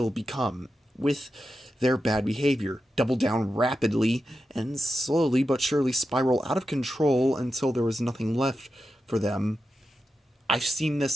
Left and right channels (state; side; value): normal; both; correlation 0.90